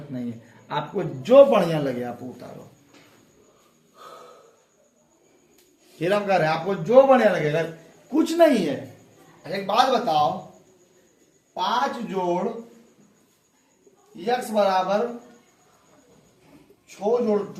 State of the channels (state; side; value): identical; both; correlation 1.00